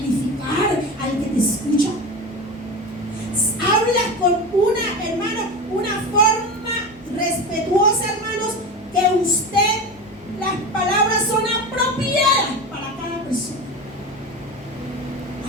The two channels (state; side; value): normal; both; correlation 0.26